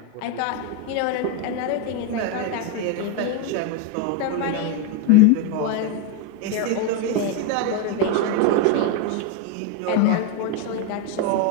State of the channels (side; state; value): both; different; correlation 0.02